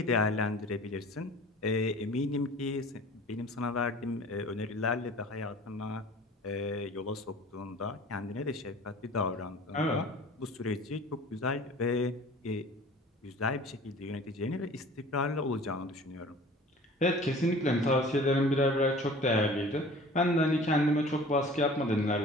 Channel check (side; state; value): both; normal; correlation 0.45